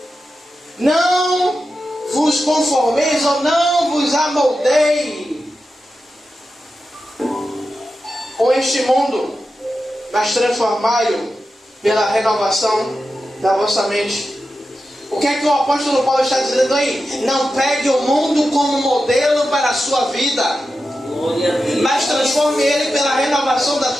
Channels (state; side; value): normal; both; correlation 0.91